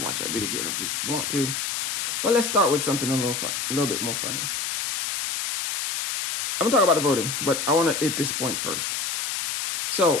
watch that video if you ever want to. But let's start with something a little bit more funny. I'm gonna talk about the voting, but I want to hit this point first.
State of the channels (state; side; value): noise; left; hiss, 2 dB below the sound